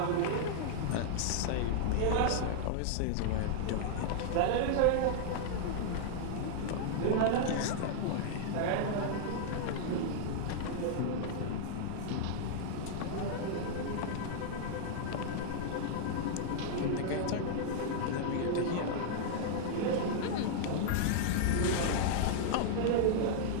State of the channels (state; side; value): different; both; correlation -0.01